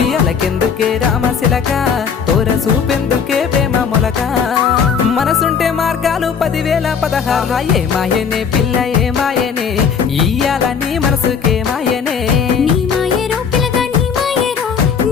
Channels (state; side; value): quieter; right; 6.7 dB